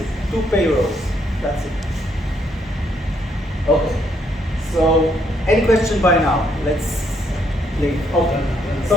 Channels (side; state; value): both; normal; correlation 0.72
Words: 2 payrolls. That's it. Okay. So, any question by now? Let's leave. Okay.